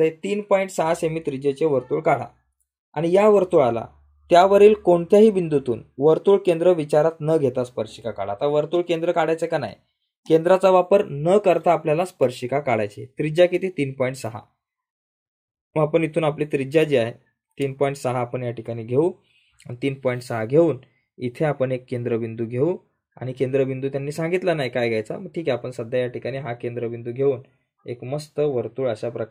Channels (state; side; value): identical; both; correlation 1.00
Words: 3.6 सेमी त्रिज्येचे वर्तुळ काढा आणि या वर्तुळाला त्यावरील कोणत्याही बिंदूतून वर्तुळ केंद्र विचारात न घेता स्पर्शिका काढा. आता वर्तुळ केंद्र काढायचं का नाही, केंद्राचा वापर न करता आपल्याला स्पर्शिका काढायची. त्रिज्या किती, 3.6. मग आपण इथून आपली त्रिज्या जी आहे 3.6 आपण या ठिकाणी घेऊ. 3.6 घेऊन इथे आपण एक केंद्रबिंदू घेऊ आणि केंद्रबिंदू त्यांनी सांगितला नाही काय घ्यायचा, मग ठीक आहे आपण सध्या या ठिकाणी हा केंद्रबिंदू घेऊन एक मस्त वर्तुळ अशा